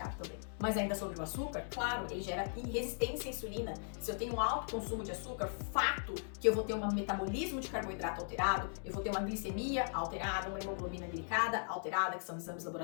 também. Mas ainda sobre o açúcar, claro, ele gera resistência à insulina. Se eu tenho um alto consumo de açúcar, fato que eu vou ter um metabolismo de carboidrato alterado, eu vou ter uma glicemia alterada, uma hemoglobina glicada alterada, que são exames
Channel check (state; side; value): silent; right; digital silence